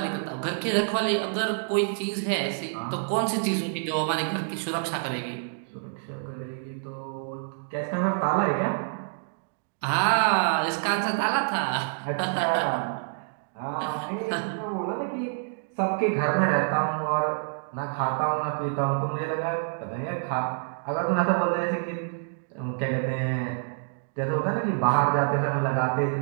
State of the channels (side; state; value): left; silent; digital silence